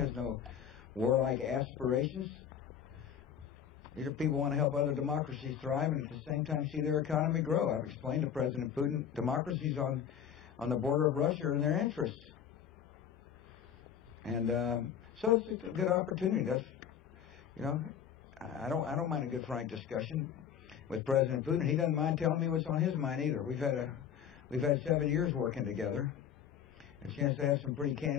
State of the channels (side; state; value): right; quieter; 8.6 dB